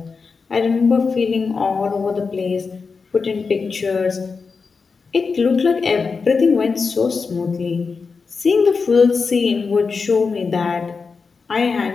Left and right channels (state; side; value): quieter; right; 4.9 dB